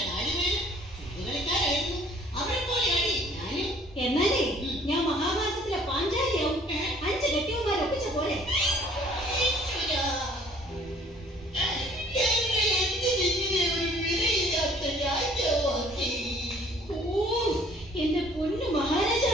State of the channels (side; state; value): both; normal; correlation 0.56